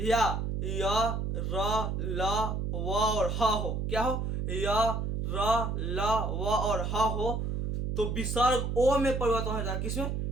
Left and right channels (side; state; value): right; noise; hum, 1 dB below the sound